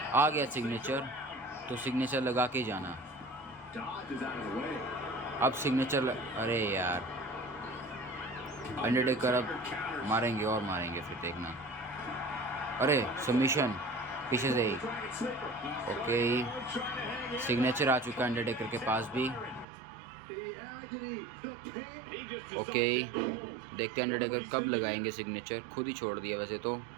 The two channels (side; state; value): left; drops out; at 19.7 s